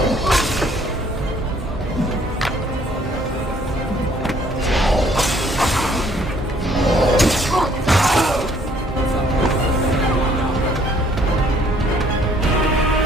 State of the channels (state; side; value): normal; both; correlation 0.62